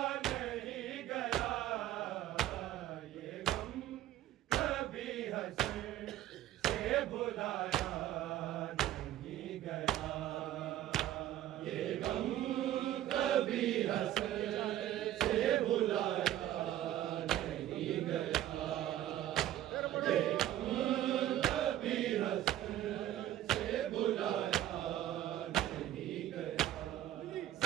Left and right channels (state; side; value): quieter; left; 13.0 dB